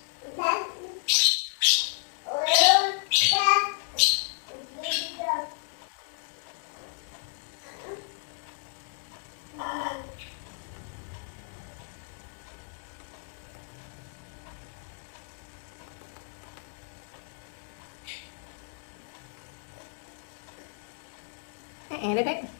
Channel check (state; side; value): silent; right; digital silence